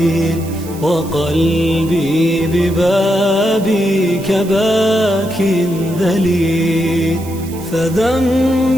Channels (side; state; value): right; noise; hiss, 18 dB below the sound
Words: وقلبي ببابك باك ذليل،